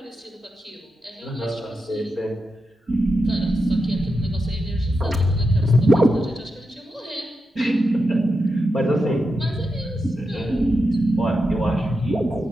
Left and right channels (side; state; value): both; normal; correlation 0.88